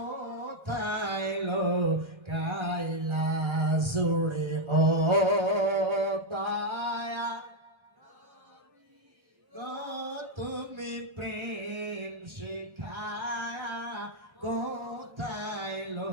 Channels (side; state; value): left; late; 1.3 ms